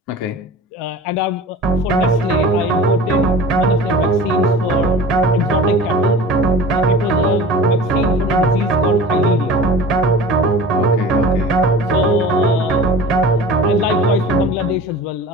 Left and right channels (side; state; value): both; normal; correlation 0.38